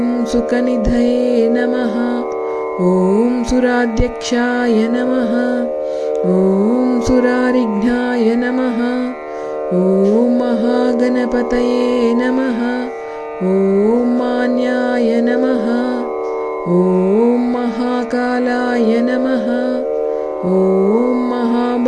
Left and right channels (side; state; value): both; identical; correlation 1.00